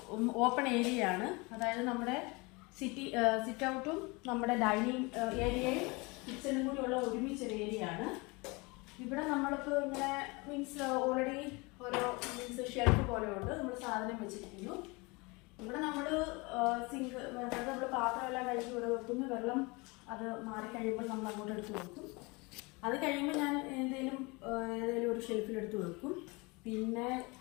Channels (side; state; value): right; quieter; 26.5 dB